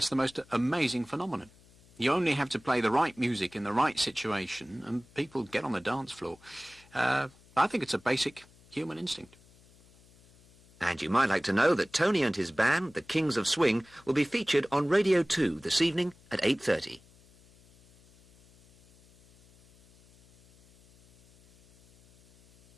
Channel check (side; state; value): left; noise; hum, 27 dB below the sound